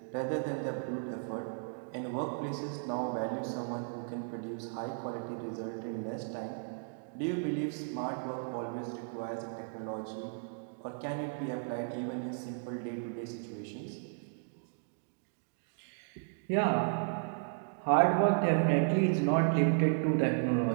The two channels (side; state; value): left; silent; digital silence